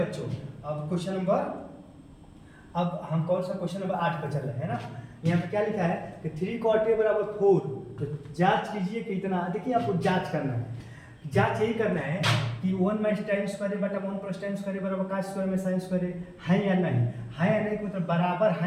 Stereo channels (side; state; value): both; identical; correlation 1.00